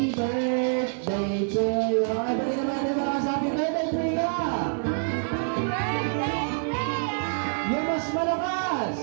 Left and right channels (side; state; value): left; silent; 61 dB below the other